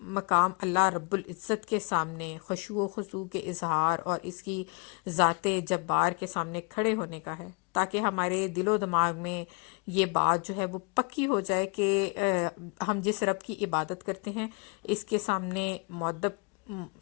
مقام اللہ رب العزت کے سامنے خشوع و خضوع کے اظہار اور اس کی ذات جبار کے سامنے کھڑے ہونے کا ہے, تاکہ ہمارے دل و دماغ میں یہ بات جو ہے وہ پکی ہو جائے کہ ہم جس رب کی عبادت کرتے ہیں اس کے سامنے مؤدب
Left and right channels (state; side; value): quieter; right; 32.3 dB